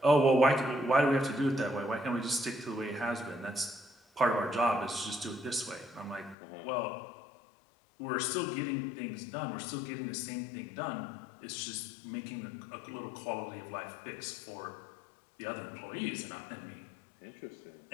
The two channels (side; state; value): right; drops out; at 6.4 s